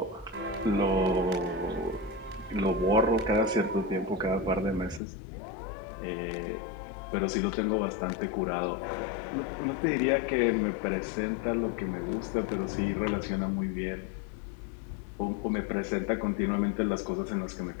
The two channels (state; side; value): drops out; right; at 5.0 s